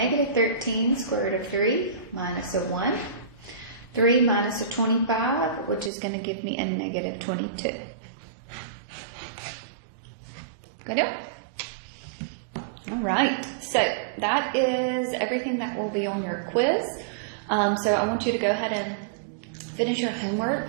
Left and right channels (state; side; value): drops out; left; at 5.9 s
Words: 13 square root of 3 minus a 1. 3 minus a 25, which is going to give me a negative 22. Good deal? All right, so that is everything that will be on your quiz. So I want you to go ahead and finish your